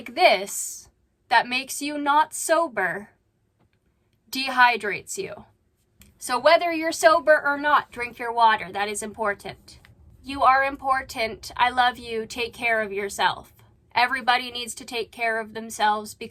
this that makes you not sober dehydrates you. So whether you're sober or not, drink your water. That is important. You are important. I love you. Take care of yourself. Everybody needs to take care of themselves,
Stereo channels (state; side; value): identical; both; correlation 1.00